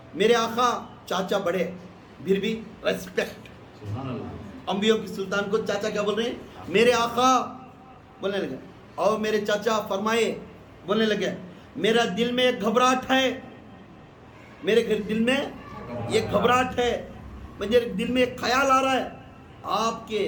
آقا چاچا بڑے، پھر بھی ریسپیکٹ، انبیاء کی سلطان کو چاچا کیا بول رہے ہیں؟ میرے آقا بولنے لگے، اور میرے چاچا فرمائے بولنے لگے میرا دل میں ایک گھبراہٹ ہے، میرے دل میں ایک گھبراہٹ ہے، مجھے دل میں ایک خیال آ رہا ہے، آپ کے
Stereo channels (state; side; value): identical; both; correlation 1.00